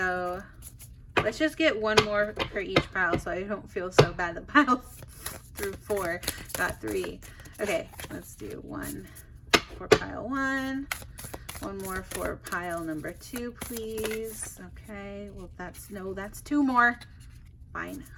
let's just get 1 more for each pile, so I don't feel so bad that pile through 4 got 3. Okay, let's do 1 for pile 1. 1 more for pile number 2, please. Okay, well that's 2 more. Fine.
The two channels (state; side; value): identical; both; correlation 1.00